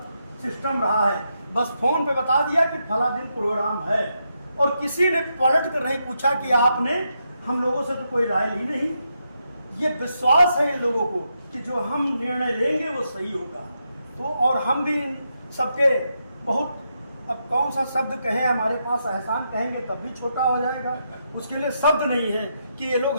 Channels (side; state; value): both; inverted; correlation -0.82